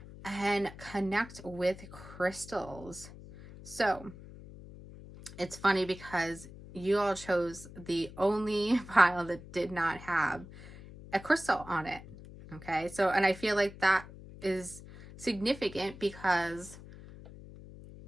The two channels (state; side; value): noise; left; hum, 16 dB below the sound